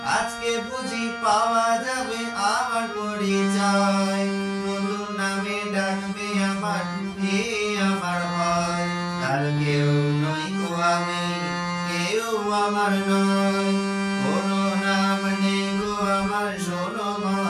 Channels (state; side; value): identical; both; correlation 1.00